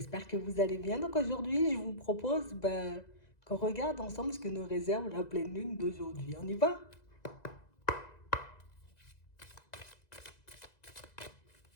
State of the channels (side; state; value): right; late; 2.0 ms